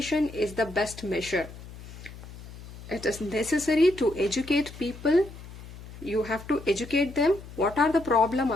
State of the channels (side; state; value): left; noise; hum, 15 dB below the sound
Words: is the best measure. It is necessary to educate people. You have to educate them. What are the problems